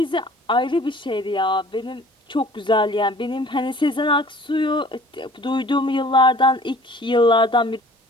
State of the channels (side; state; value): both; normal; correlation 0.50